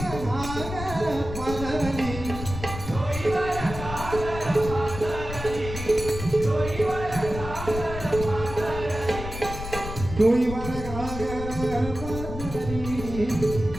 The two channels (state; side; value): noise; left; rumble, 8 dB below the sound